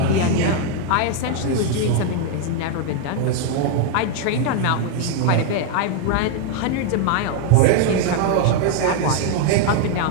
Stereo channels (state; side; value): different; both; correlation 0.00